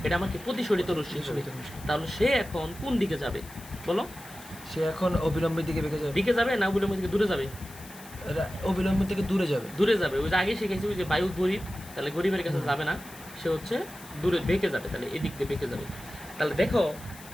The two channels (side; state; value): left; noise; hiss, 18 dB below the sound